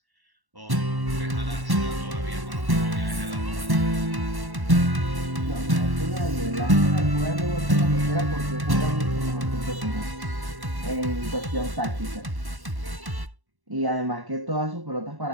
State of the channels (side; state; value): left; late; 1.1 ms